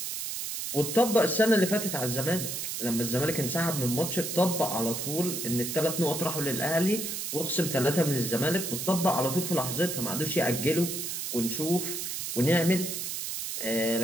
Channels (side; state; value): right; noise; hiss, 4 dB below the sound